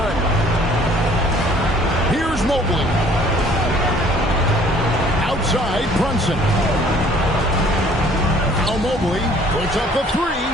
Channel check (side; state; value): both; normal; correlation 0.56